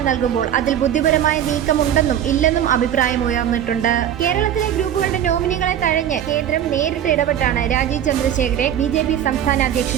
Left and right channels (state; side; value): quieter; left; 10.2 dB